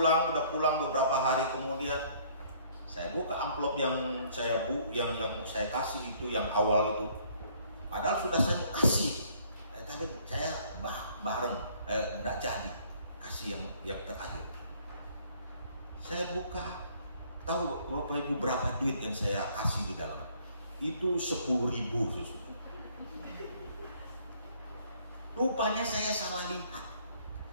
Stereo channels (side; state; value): both; inverted; correlation -0.60